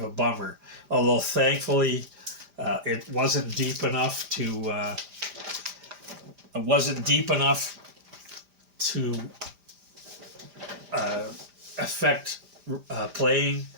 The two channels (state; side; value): late; left; 5.0 ms